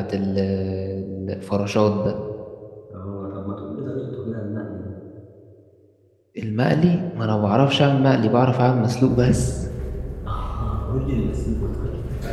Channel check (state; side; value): identical; both; correlation 1.00